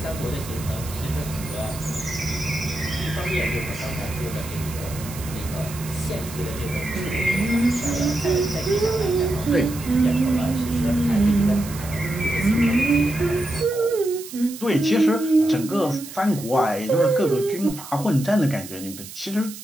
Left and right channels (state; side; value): noise; right; hiss, 14 dB below the sound